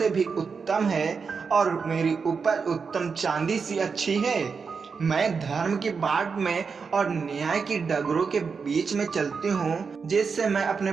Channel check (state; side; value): quieter; left; 5.4 dB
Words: भी उत्तम है और मेरी उपज उत्तम चांदी सी अच्छी है। मैं धर्म की बाट में और न्याय की डगरों के बीच में चलती हूँ, जिससे मैं अपने